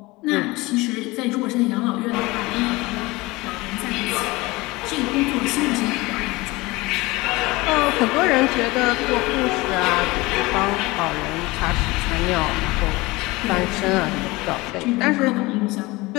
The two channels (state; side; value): quieter; right; 22.0 dB